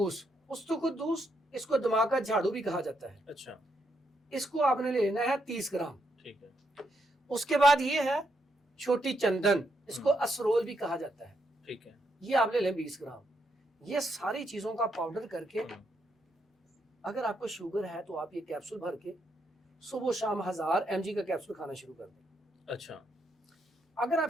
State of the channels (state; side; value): normal; both; correlation 0.79